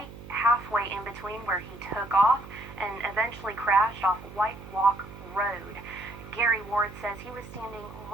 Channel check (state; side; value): noise; right; hum, 15 dB below the sound